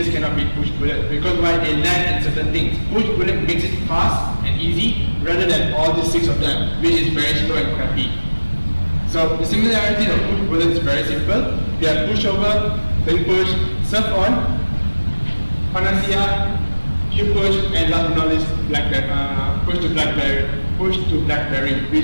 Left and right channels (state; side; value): inverted; both; correlation -1.00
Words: cannot beat PushBullet because why? They lack in certain things. PushBullet makes it fast and easy rather than all the six of them, which is very slow and crappy. So the similarity of PushBullet is very simple. They are pushover, then push, surf on, Panacea, QPush, and last but not least, push to BlackBerry,